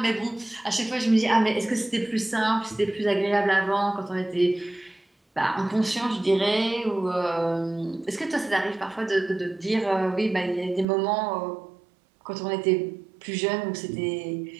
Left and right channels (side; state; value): left; drops out; at 10.9 s